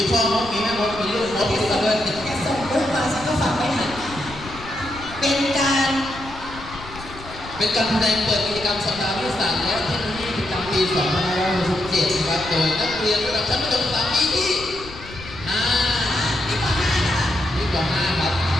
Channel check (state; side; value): noise; left; rumble, 15 dB below the sound